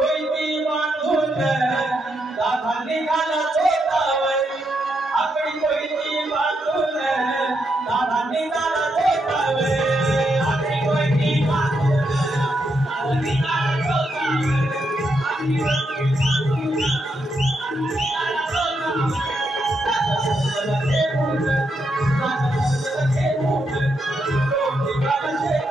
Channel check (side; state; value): both; normal; correlation 0.81